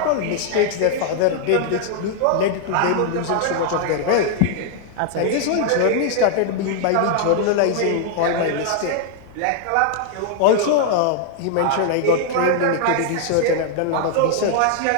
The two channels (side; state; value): both; different; correlation 0.00